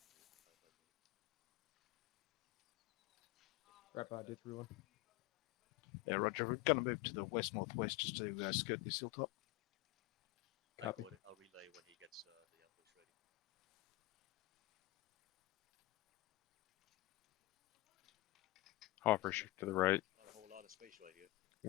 Yeah, Roger. We're going to move to the west-northwest just to skirt this hilltop. I got it. I'll relay when he gets the ambush ready. Hopper shift to the right. Not a whole lot of space right here.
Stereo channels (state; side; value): quieter; right; 19.1 dB